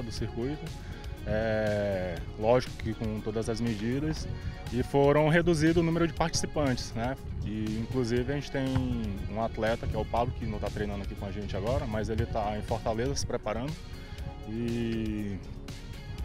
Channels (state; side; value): identical; both; correlation 1.00